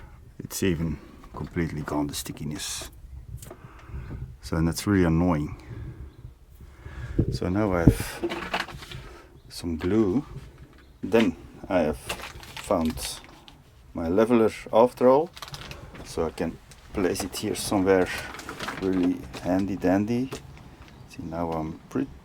It's even completely gone, the stickiness. So, and that's really annoying. So now I have some glue. Then I have found my leveler after all, so I can place it here somewhere really handy dandy. See, now I'm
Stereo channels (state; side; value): identical; both; correlation 1.00